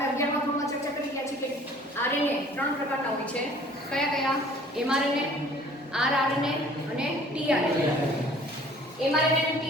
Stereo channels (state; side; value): normal; both; correlation 0.52